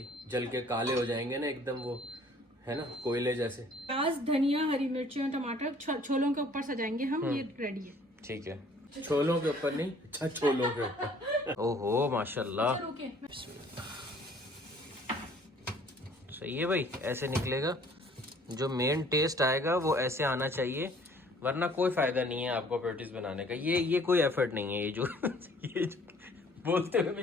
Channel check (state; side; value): normal; both; correlation 0.56